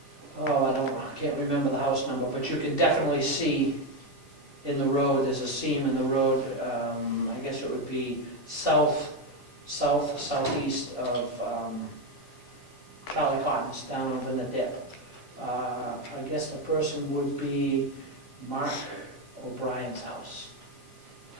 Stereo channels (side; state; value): both; normal; correlation 0.09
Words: I can't remember the house number, but you can definitely see in the road, there's a seam in the road, I guess it would be southeast of Charlie Cotton's, down over in the dip. I guess the person would be Mark O'Brien's house.